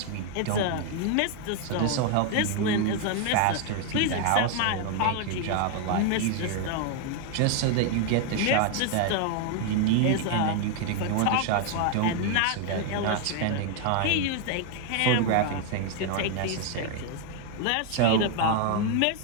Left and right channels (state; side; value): different; both; correlation 0.01